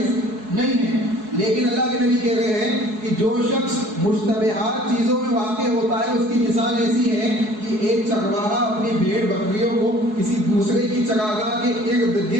نہیں ہے۔ لیکن اللہ کے نبی کہہ رہے ہیں کہ جو شخص مشتبہات چیزوں میں واقع ہوتا ہے، اس کی مثال ایسی ہے کہ ایک چرواہا اپنی بھیڑ بکریوں کو کسی دوسرے کی چراگاہ کے ارد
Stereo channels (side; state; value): left; late; 4.7 ms